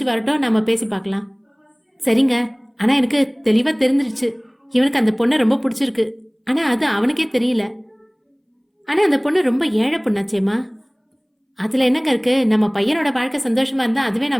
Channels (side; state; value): both; identical; correlation 1.00